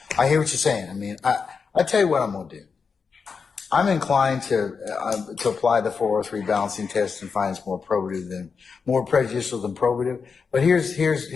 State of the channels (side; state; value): right; quieter; 5.5 dB